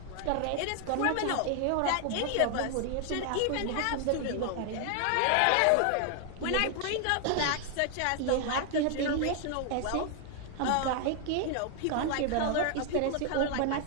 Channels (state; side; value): different; both; correlation 0.00